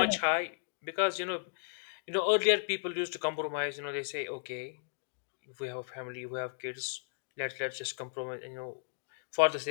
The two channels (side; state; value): right; silent; digital silence